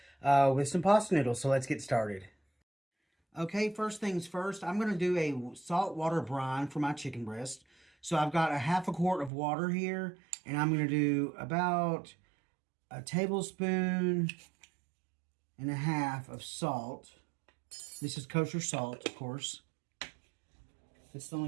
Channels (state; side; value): drops out; left; at 9.3 s